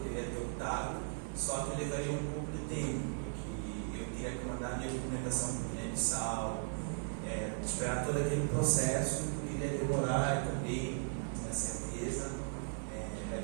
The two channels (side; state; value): left; silent; 53 dB below the other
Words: ter optado, só que eu levaria um pouco de tempo, porque eu teria que mandar minha documentação para o Guiné-Bissau, esperar todo aquele processo, poderia demorar também, na certeza, da